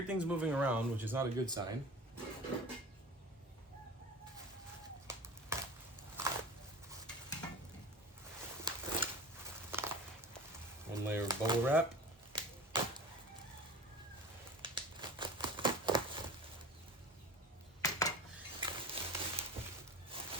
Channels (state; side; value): normal; both; correlation 0.36